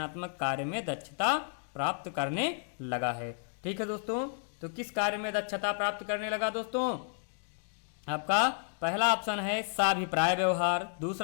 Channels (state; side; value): silent; right; digital silence